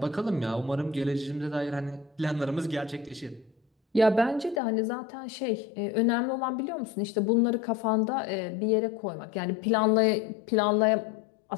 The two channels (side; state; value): right; drops out; at 4.6 s